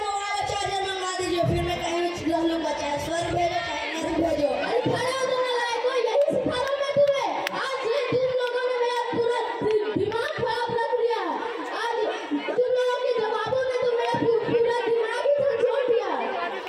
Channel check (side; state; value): both; identical; correlation 1.00